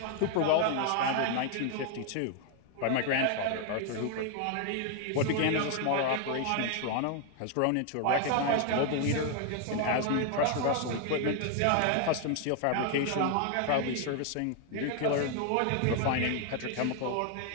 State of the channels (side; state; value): both; different; correlation 0.00